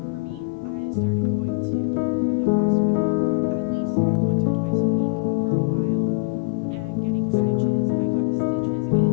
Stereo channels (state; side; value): quieter; right; 31.3 dB